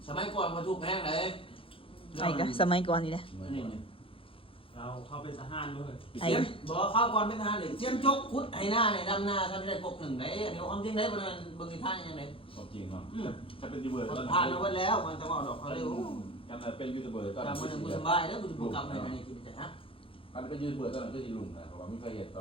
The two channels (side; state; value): right; late; 0.26 ms